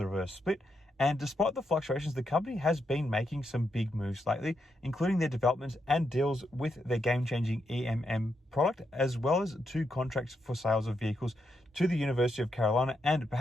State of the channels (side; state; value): both; normal; correlation 0.82